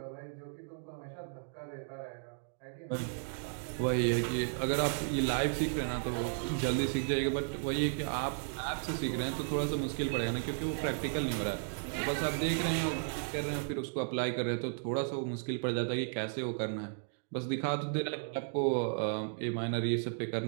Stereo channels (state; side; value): silent; left; digital silence